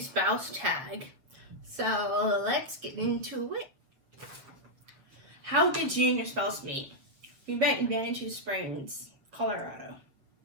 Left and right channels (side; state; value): left; late; 7.2 ms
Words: tag. So let's get into it. How did you and your spouse meet? We met in Manitou Springs, Colorado.